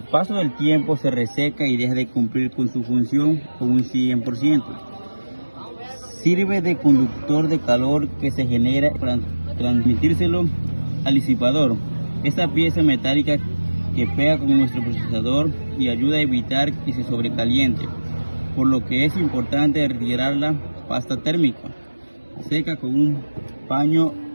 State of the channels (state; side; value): inverted; both; correlation -1.00